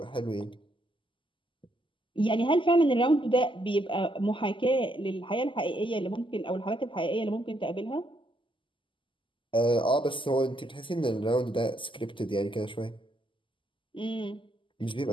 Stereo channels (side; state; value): right; late; 0.25 ms